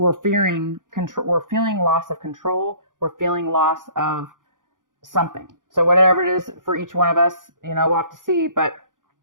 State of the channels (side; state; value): left; late; 0.88 ms